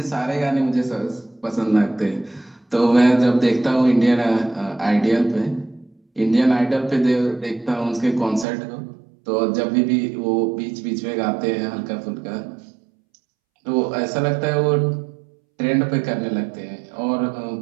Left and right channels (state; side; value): drops out; left; at 8.5 s